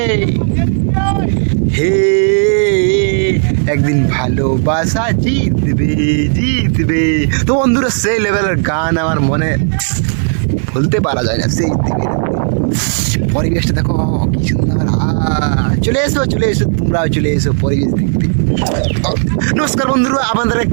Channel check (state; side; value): silent; left; digital silence